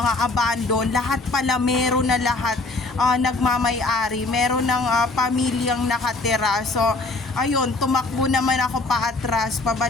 abandon, lahat pala meron na lahat, nagmamay-ari, meron ng pamilyang nakatira. So ayun, tumakbo naman ako paatras,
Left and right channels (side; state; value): right; quieter; 3.3 dB